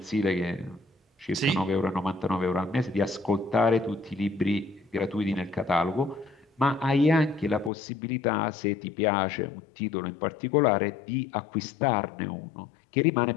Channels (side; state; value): right; drops out; at 7.7 s